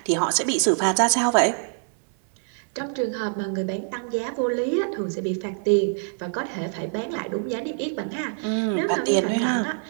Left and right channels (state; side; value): silent; left; 62 dB below the other